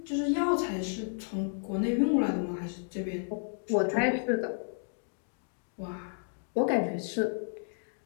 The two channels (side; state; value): right; silent; digital silence